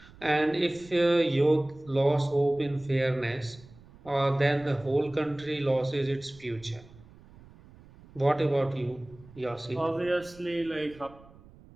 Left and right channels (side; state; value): right; noise; rumble, 23 dB below the sound